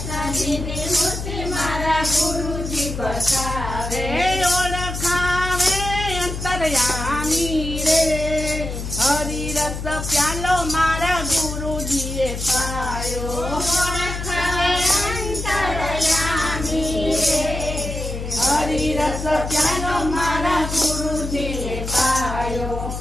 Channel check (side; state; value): left; noise; hum, 6 dB below the sound